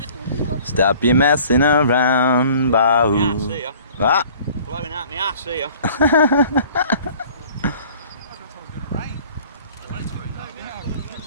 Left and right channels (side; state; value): both; inverted; correlation -0.51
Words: Stop your messing around, Bahoo. See ya. What? Blowing out my ass here.